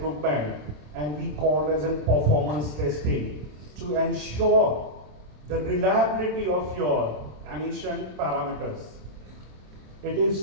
and we call as in performance testing to ensure the reliability of your emission parameters. It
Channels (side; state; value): left; late; 27 ms